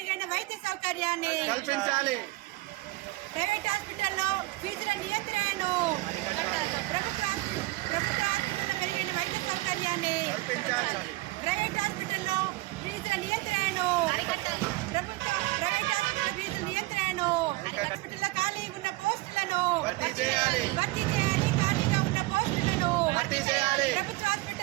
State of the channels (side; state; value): left; quieter; 21.1 dB